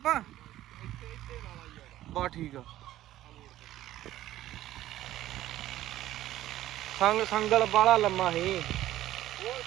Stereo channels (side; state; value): left; quieter; 14.1 dB